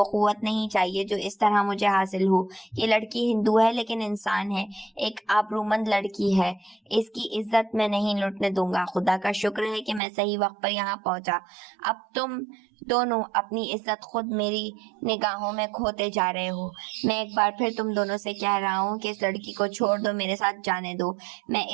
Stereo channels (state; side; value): drops out; left; at 10.0 s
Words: قوت نہیں چاہیے جو اس طرح مجھے حاصل ہو. یہ لڑکی ہندو ہے لیکن انسان ہے, ایک آبرومند لڑکی ہے. اس کی عزت میں نہیں لوٹنے دوں گا. خدا کا شکر ہے کہ میں صحیح وقت پر یہاں پہنچا. اب تم دونوں اپنی عزت خود میری نگاہوں میں کھوتے جا رہے ہو. میں ایک بار پھر تم دونوں سے کہہ رہا ہوں کہ اس لڑکی کو چھوڑ دو, میرے ساتھ جانے دو. میں